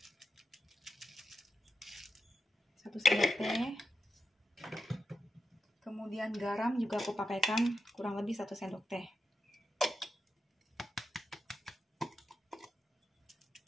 Satu sendok teh. Kemudian garam juga aku pakaikan kurang lebih 1 sendok teh.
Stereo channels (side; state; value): both; normal; correlation 0.88